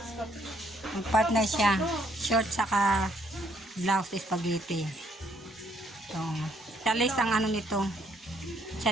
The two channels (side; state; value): both; normal; correlation 0.69